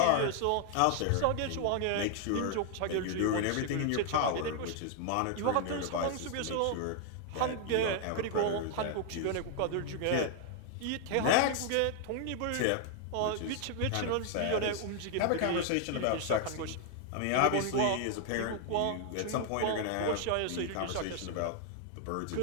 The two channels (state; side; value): different; both; correlation 0.00